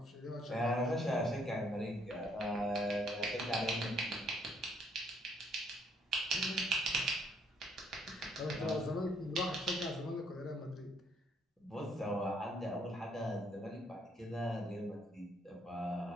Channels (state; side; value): normal; both; correlation 0.68